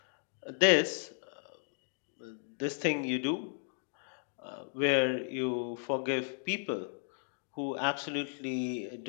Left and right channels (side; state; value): right; silent; digital silence